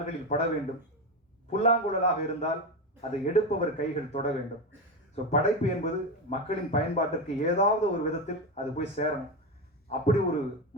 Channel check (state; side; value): normal; both; correlation 0.16